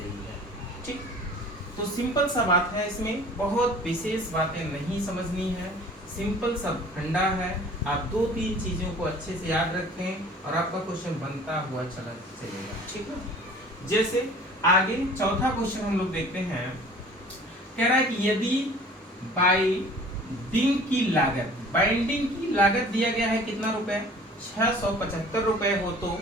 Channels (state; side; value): normal; both; correlation 0.47